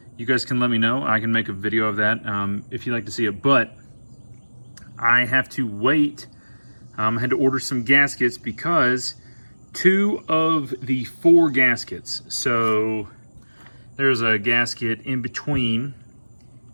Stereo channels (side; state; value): both; inverted; correlation -1.00